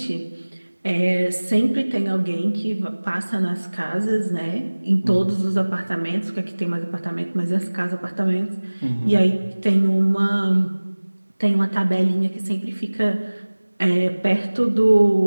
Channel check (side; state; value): both; inverted; correlation -1.00